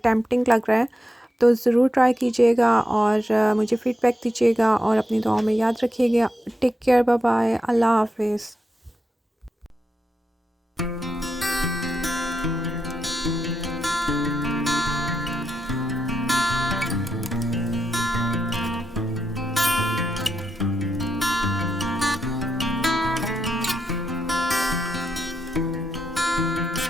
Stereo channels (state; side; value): normal; both; correlation 0.85